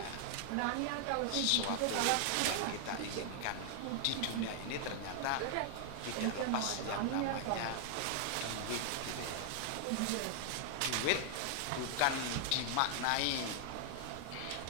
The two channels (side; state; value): both; different; correlation 0.00